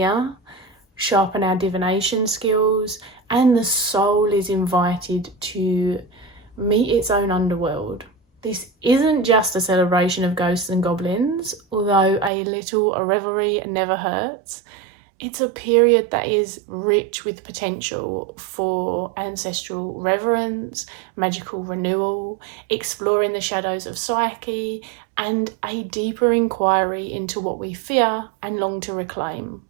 sharpen our divination skills, and the soul is invited to meet its own underworld. This isn't just a celebration of ghosts and goblins, although a little revelry never hurts. It's a period that is rich with potential for ancestral reverence, magical renewal, exploring the shadows of psyche, and a deeper inquiry into what we fear and long to reclaim.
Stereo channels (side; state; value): left; drops out; at 12.3 s